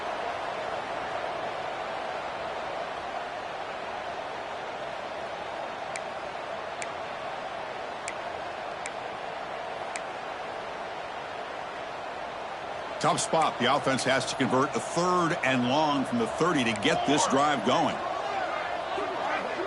Tough spot. The offense has to convert a 3rd and long from the 30 to get this drive going.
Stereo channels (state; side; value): identical; both; correlation 1.00